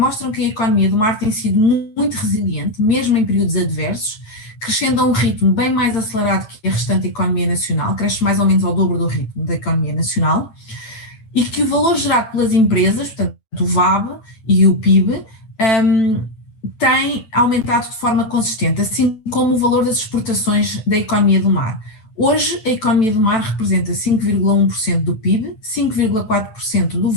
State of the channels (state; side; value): late; right; 9.2 ms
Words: que a economia do mar tem sido muito resiliente, mesmo em períodos adversos, crescendo a um ritmo bem mais acelerado que a restante economia nacional, cresce mais ou menos ao dobro do ritmo da economia nacional, e que o valor gerado pelas empresas, portanto o VAB e o PIB, tem aumentado de forma consistente, assim como o valor das exportações da economia do mar. Hoje, a economia do mar representa 5,1% do PIB, 5,4% do